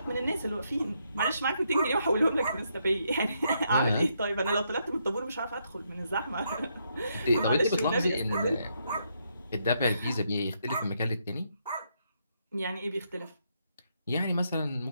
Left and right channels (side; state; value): both; inverted; correlation -0.77